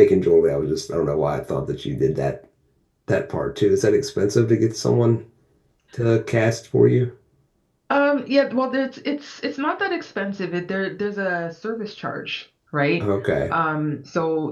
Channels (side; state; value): both; identical; correlation 1.00